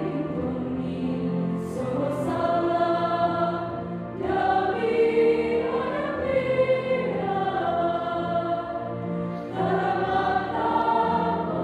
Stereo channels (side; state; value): both; identical; correlation 1.00